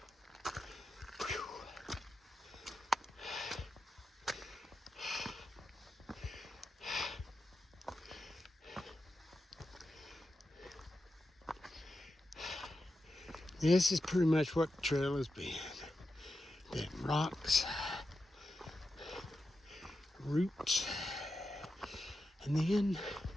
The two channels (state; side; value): normal; both; correlation 0.89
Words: This is pretty much what the trail has been. Been rocks, roots, and then you